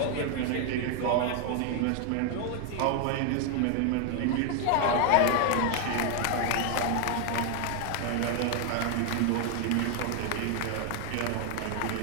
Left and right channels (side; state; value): both; different; correlation 0.00